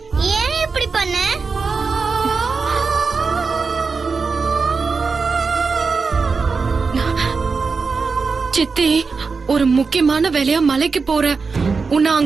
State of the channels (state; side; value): quieter; left; 4.7 dB